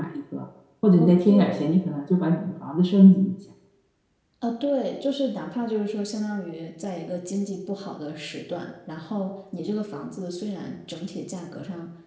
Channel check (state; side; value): identical; both; correlation 1.00